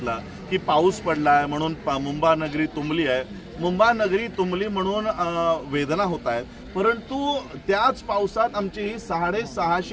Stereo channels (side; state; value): both; identical; correlation 1.00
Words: की पाऊस पडलाय म्हणून मुंबा नगरी तुंबली आहे. मुंबा नगरी तुंबली म्हणून वेदना होत आहेत. परंतु त्याच पावसात आमची ही